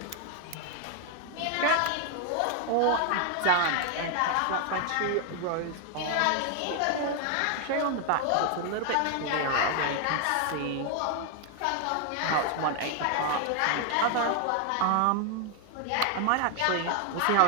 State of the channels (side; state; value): both; different; correlation 0.00